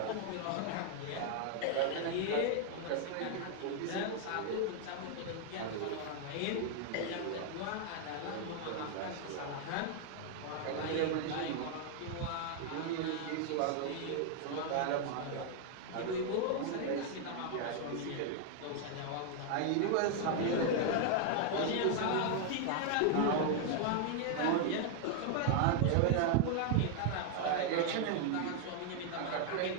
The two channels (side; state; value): both; different; correlation 0.00